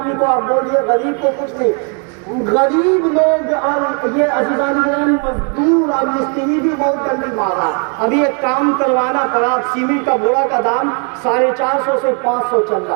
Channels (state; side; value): quieter; left; 39.1 dB